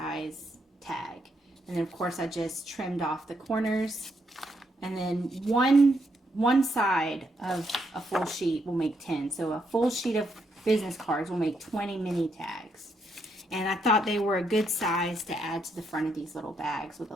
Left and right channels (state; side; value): normal; both; correlation 0.77